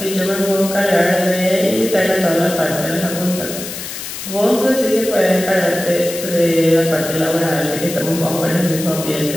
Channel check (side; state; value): left; noise; hiss, 9 dB below the sound